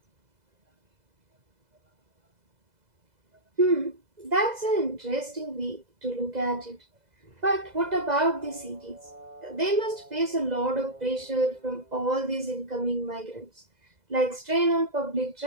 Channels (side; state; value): left; late; 2.0 ms